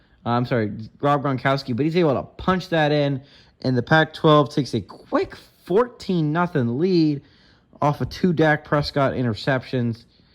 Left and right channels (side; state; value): both; identical; correlation 1.00